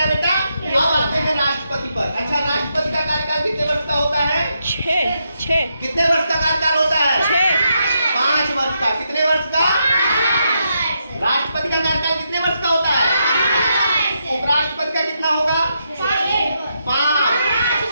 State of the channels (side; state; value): both; inverted; correlation -0.81